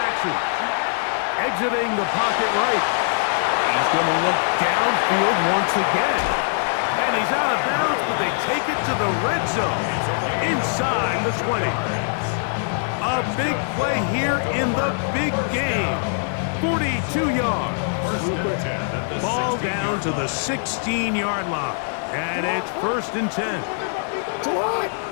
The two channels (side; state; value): right; silent; digital silence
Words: Exiting the pocket right. He's going to look downfield once again. And he's out of bounds, but they take it to the red zone. Inside the 20. A big play here in the big game. 42 yards. Ball down to the 16-yard line. And it's 1st and 10.